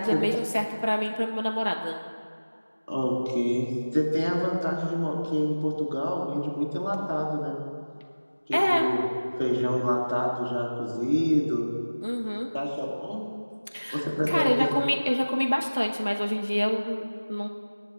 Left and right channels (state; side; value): inverted; both; correlation -1.00